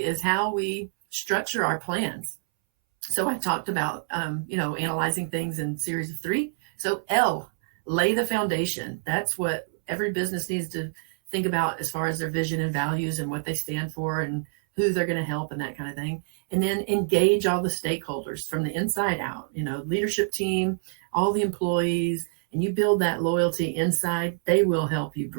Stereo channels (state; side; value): silent; left; 61 dB below the other